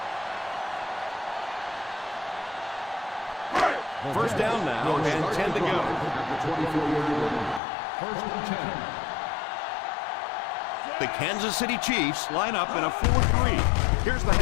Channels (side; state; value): right; drops out; at 7.6 s